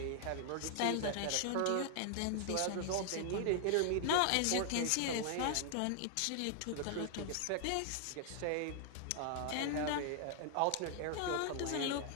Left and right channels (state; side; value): different; both; correlation 0.00